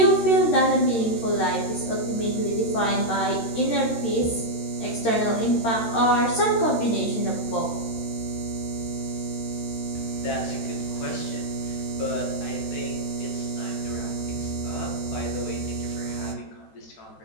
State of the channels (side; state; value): right; late; 13 ms